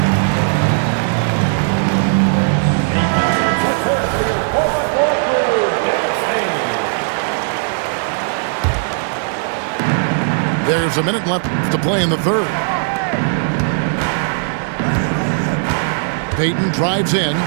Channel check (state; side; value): silent; left; digital silence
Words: There's a minute left to play in the third. Payton drives in.